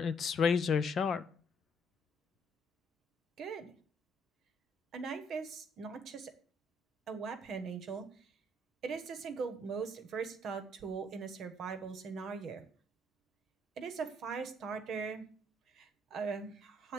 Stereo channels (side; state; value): both; normal; correlation 0.69